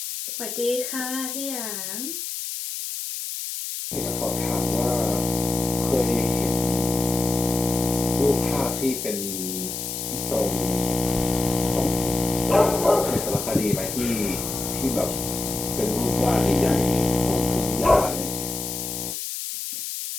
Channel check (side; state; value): left; noise; hiss, 5 dB below the sound